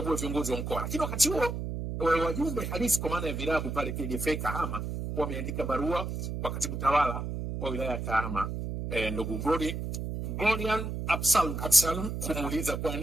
viongozi wa mkoa. Lakini wakati huo wajumbe halisi kwa maana ya vilabu pale KDFA Kahama wameandika barua kwa katibu tawala wa wilaya ya Kahama, ndugu Golian Absalom, kumuuliza kwa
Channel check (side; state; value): right; noise; hum, 4 dB below the sound